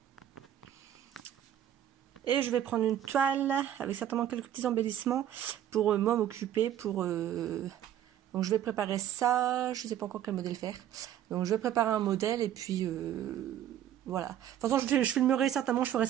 Et je vais prendre une toile avec certainement quelques petits embellissements pour moi m'occuper. Donc je vais préparer ça, je ne sais pas encore quel modèle faire. Donc je vais préparer un modèle et puis voilà. De toute façon je filmerai certainement, je ferai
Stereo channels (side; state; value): left; quieter; 11.2 dB